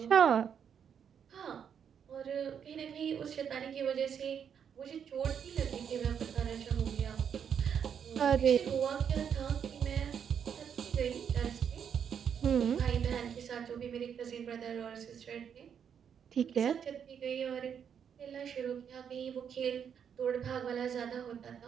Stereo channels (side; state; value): left; quieter; 7.9 dB